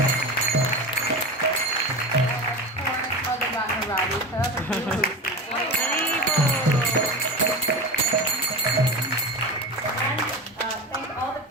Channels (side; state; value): both; normal; correlation 0.26